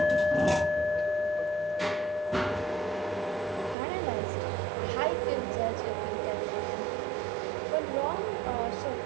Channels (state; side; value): drops out; left; at 3.8 s